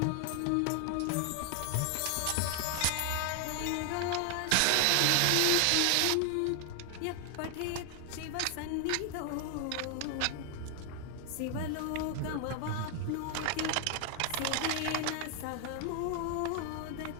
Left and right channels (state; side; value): different; both; correlation 0.00